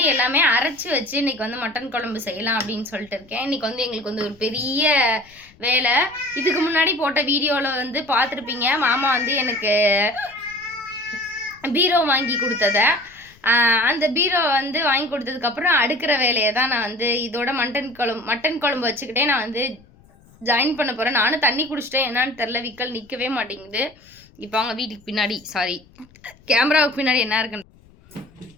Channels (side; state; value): left; noise; rumble, 27 dB below the sound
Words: எல்லாமே அரைச்சி வச்சு இன்றைக்கி வந்து மட்டன் குழம்பு செய்யலாம் அப்படின்னு சொல்லிட்டு இருக்கேன். இன்றைக்கி வந்து எங்களுக்கு வந்து ஒரு பெரிய வேலை. இதுக்கு முன்னாடி போட்ட வீடியோவில் வந்து பார்த்துருப்பீங்க, மாமா வந்து எனக்கு பீரோ வாங்கி கொடுத்ததை. அந்த பீரோ வந்து வாங்கி கொடுத்ததுக்கப்புறம் அடுக்கிற வேலையை தான் நான் வந்து இதோட மட்டன் குழம்பு வச்சுக்கிட்டே நான் வந்து ஜாயின் பண்ண போகிறேன். நானும் தண்ணி குடிச்சிட்டேன், என்னான்னு தெரில, விக்கல் நிற்கவே மாட்டேங்குது. இப்போ அவங்க வீட்டுக்கு பின்னாடி கேமராவுக்கு பின்னாடி என்ன இருக்குன்னு,